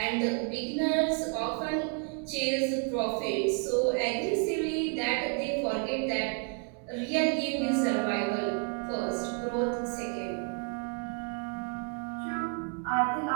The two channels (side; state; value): left; quieter; 39.1 dB